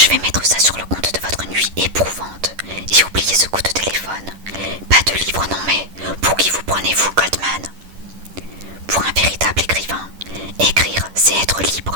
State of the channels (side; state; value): left; late; 10 ms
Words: vais mettre ça sur le compte de votre nuit éprouvante et oubliez ce coup de téléphone. Pas de livre, non mais pour qui vous prenez-vous, Goldman? Pour un véritable écrivain, écrire, c'est être